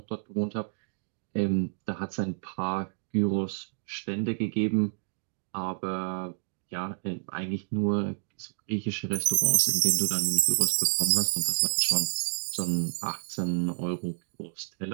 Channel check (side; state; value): left; silent; digital silence